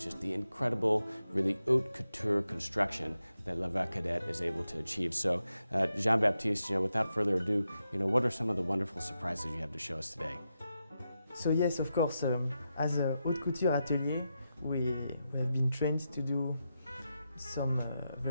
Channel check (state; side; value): inverted; both; correlation -0.87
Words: the incredible, really haute couture construction that Lavabre Cadet is able to achieve. So, Jean-Baptiste, without further ado, what are some of the wonderful surprises you have to show us today? So yes, of course, as a haute couture atelier, we have been trained to do some